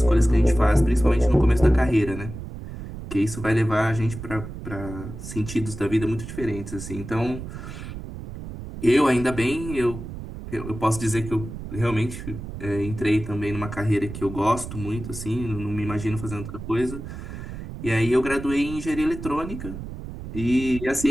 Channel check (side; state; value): right; noise; rumble, 10 dB below the sound